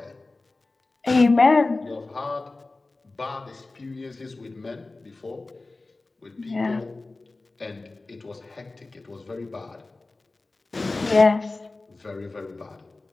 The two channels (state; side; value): quieter; right; 3.3 dB